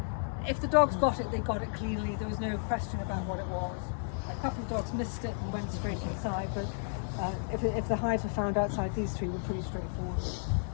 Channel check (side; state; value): right; silent; digital silence